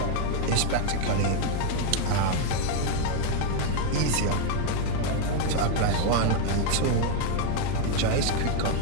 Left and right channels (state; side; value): different; both; correlation 0.01